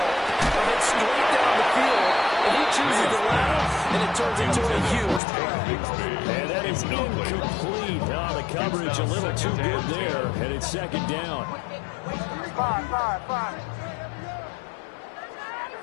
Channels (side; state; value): right; drops out; at 5.2 s